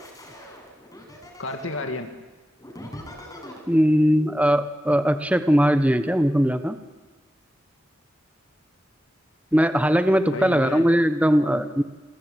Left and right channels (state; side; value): normal; both; correlation 0.93